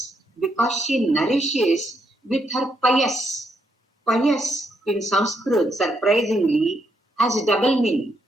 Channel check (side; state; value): both; normal; correlation 0.77